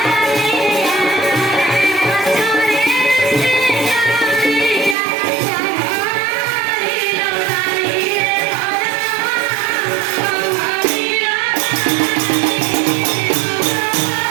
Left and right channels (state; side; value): drops out; left; at 5.0 s